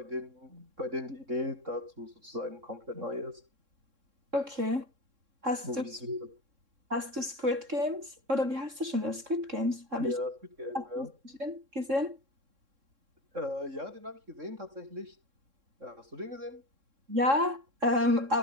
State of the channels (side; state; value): left; late; 3.7 ms